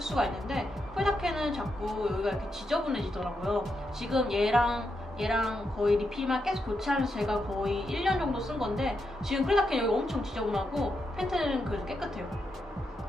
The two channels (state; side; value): normal; both; correlation 0.84